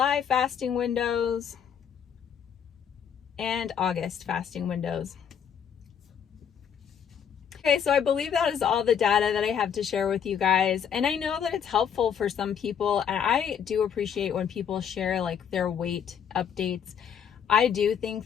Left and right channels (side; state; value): right; quieter; 8.0 dB